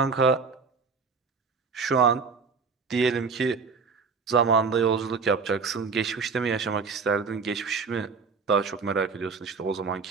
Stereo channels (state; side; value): quieter; left; 5.1 dB